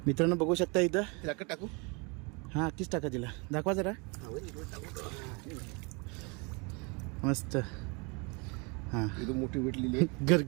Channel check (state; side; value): quieter; left; 30.8 dB